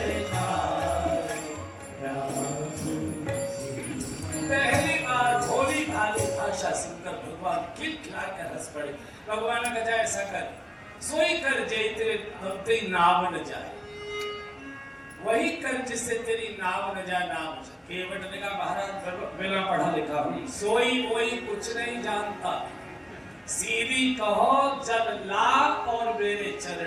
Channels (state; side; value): identical; both; correlation 1.00